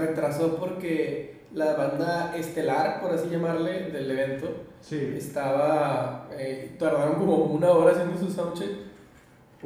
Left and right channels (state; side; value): identical; both; correlation 1.00